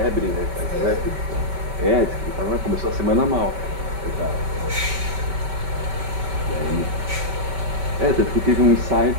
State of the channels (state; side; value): late; left; 5.2 ms